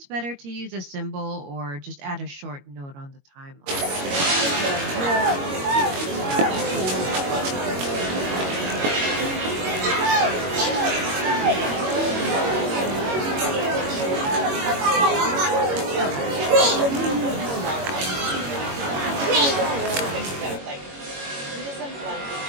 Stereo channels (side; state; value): left; late; 21 ms